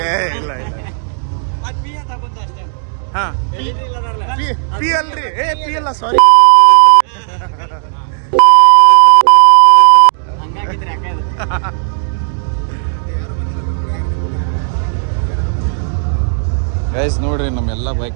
ಏ ಇಲ್ಲ ಇಲ್ಲ ಹಾ ಪಿ ಅಲ್ರಿ ಪಿ ಅಲ್ಲ ಸಾರಿ. ಗೈಸ್ ನೋಡ್ರಿ ನಮ್ಮೆಲ್ಲ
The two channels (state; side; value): silent; left; digital silence